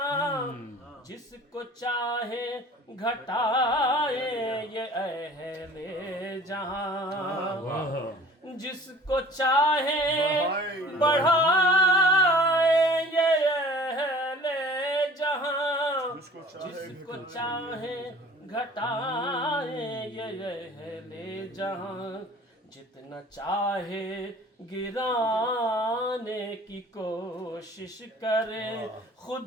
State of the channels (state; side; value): normal; both; correlation 0.47